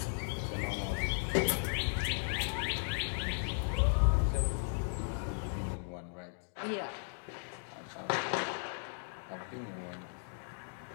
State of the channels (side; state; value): right; silent; digital silence